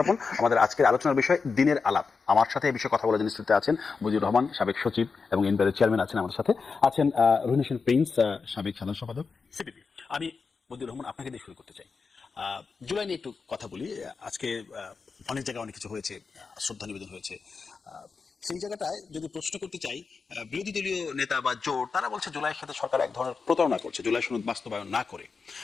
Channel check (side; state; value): right; quieter; 4.9 dB